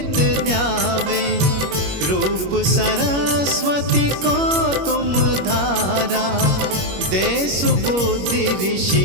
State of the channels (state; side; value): late; left; 21 ms